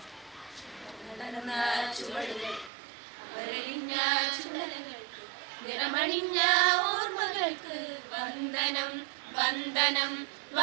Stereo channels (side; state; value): left; drops out; at 2.7 s